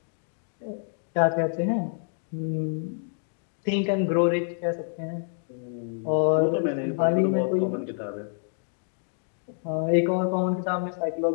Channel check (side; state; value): right; silent; digital silence